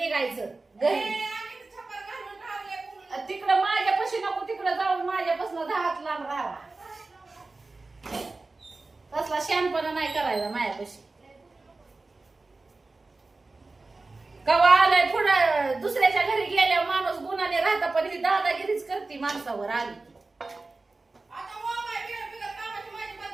घरी तिकडं माझ्यापाशी नको तिकडं जाऊन माझ्यापासून 10 हात लांब राहावा तसला शहाणपणा नाही करायला मायापाशी कवा आलंय पुढं दुसऱ्याच्या घरी गेल्यावर माणूस गुणाने राहता पण ही दादागिरीच करते माणसावर आली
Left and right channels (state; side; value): quieter; left; 3.5 dB